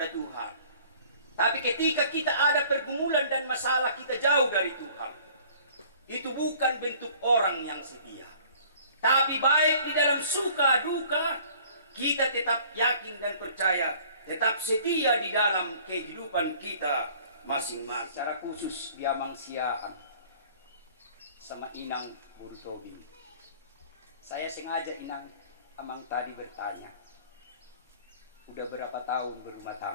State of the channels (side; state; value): both; inverted; correlation -0.53